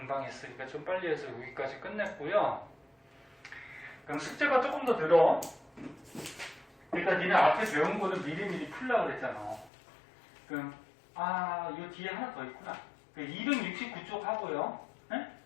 했으니까 좀 빨리 해서 여기까지 끝냈고요. 그럼 숙제가 조금 더 늘어. 그러니까 니네 앞에 배운 거는 미리미리 풀려고 그랬잖아. 그럼 이 뒤에 하나 더 있구나. 269쪽 하고요. 네?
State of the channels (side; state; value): right; drops out; at 9.7 s